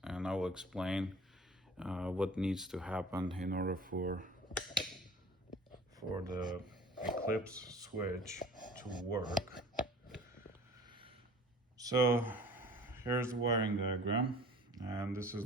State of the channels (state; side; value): normal; both; correlation 0.45